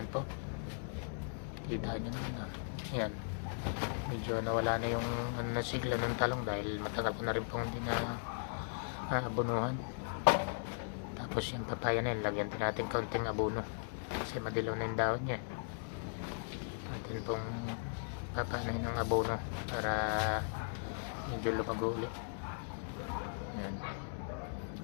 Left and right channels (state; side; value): silent; right; digital silence